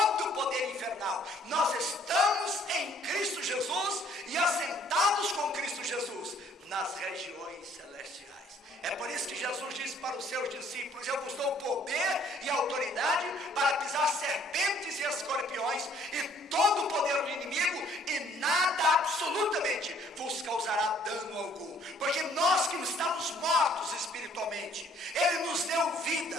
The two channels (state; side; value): normal; both; correlation 0.61